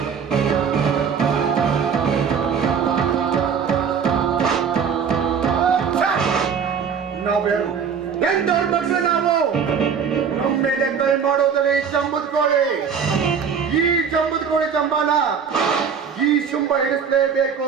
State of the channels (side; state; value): left; quieter; 6.7 dB